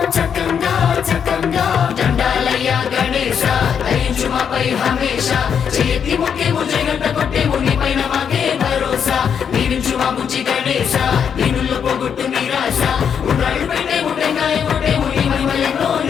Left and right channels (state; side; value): quieter; right; 7.5 dB